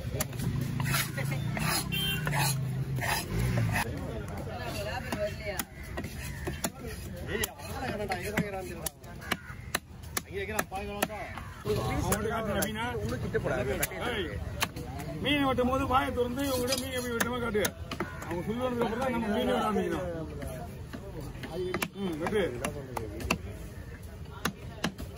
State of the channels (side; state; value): both; identical; correlation 1.00